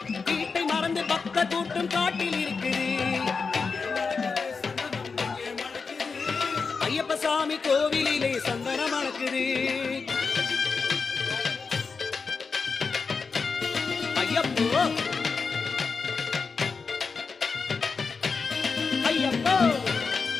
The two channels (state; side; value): quieter; right; 4.9 dB